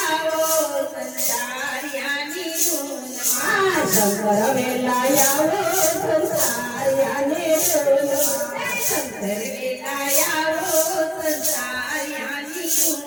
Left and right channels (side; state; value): both; identical; correlation 1.00